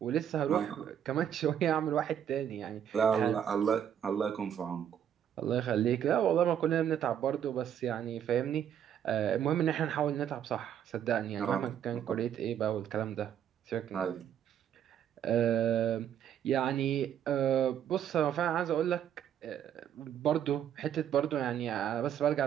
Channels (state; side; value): quieter; left; 9.5 dB